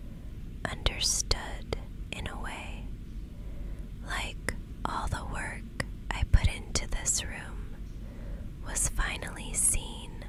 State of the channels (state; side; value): identical; both; correlation 1.00